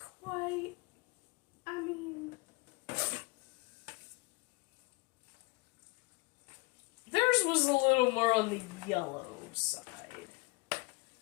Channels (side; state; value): right; quieter; 25.0 dB